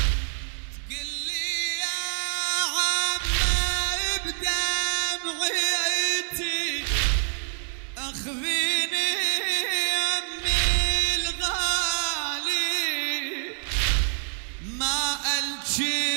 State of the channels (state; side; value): silent; left; 61 dB below the other